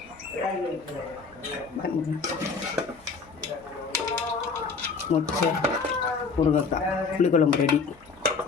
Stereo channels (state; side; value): quieter; right; 4.9 dB